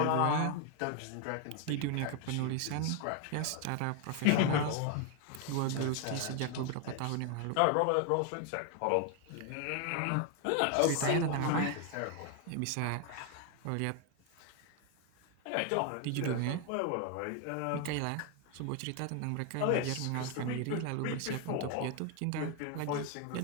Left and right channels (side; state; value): both; different; correlation 0.01